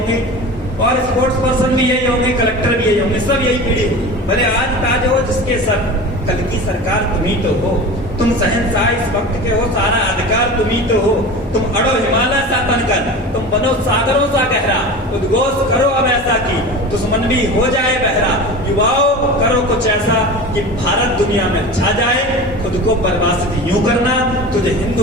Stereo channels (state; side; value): normal; both; correlation 0.32